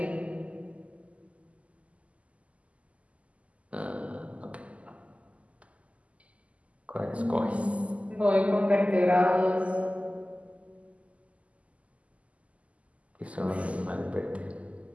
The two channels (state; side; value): late; left; 0.066 ms